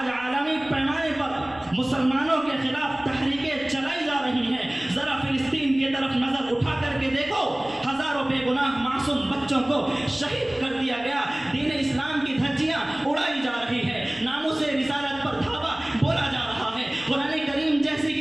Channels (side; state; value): left; noise; rumble, 26 dB below the sound